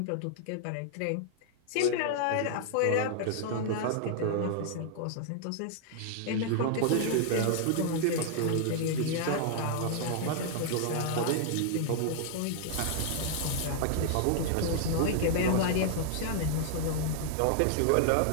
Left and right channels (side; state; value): both; different; correlation -0.01